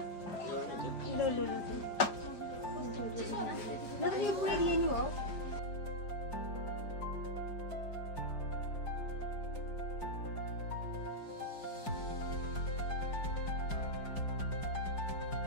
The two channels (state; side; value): late; right; 4.8 ms